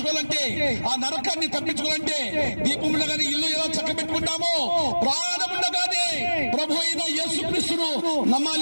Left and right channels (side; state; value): both; inverted; correlation -1.00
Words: ఆ నరకాన్ని తప్పించుకోవాలంటే దీపం ఉండగానే ఇల్లు ఎలా చక్కబెట్టుకుంటామో ప్రాణం ఉండగానే ప్రభు అయిన యేసుక్రీస్తును